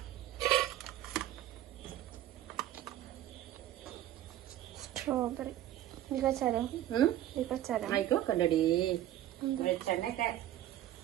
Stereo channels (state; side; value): quieter; left; 13.0 dB